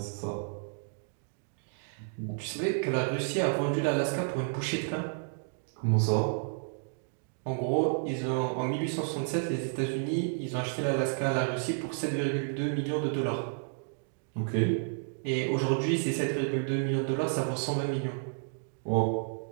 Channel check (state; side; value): silent; left; digital silence